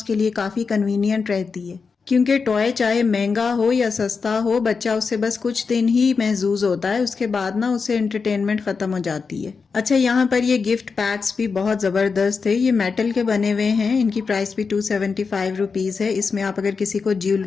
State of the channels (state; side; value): quieter; right; 5.1 dB